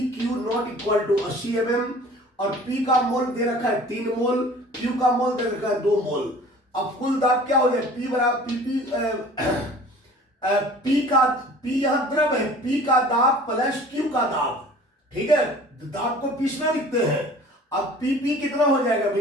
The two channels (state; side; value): normal; both; correlation 0.46